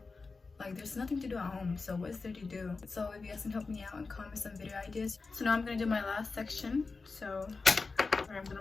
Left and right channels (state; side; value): quieter; right; 4.2 dB